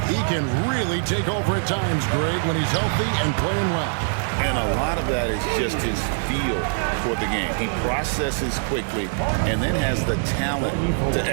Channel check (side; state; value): left; silent; 59 dB below the other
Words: he can really take over at times, Greg, when he's healthy and playing well. And a lot of that is just his feel for the game. He processes quickly and then has the talent to